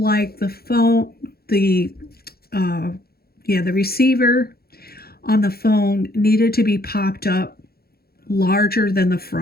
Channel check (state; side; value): late; right; 0.45 ms